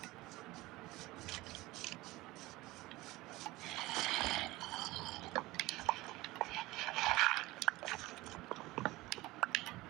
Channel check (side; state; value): left; quieter; 19.6 dB